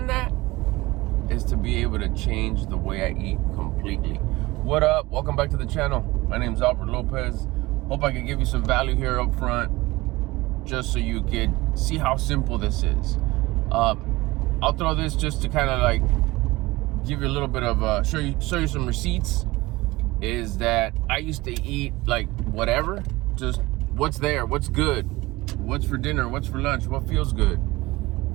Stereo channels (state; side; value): quieter; left; 20.3 dB